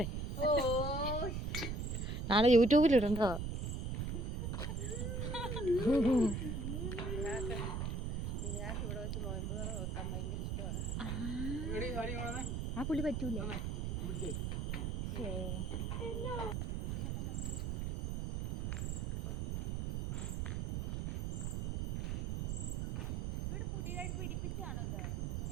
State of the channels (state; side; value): noise; right; rumble, 1 dB below the sound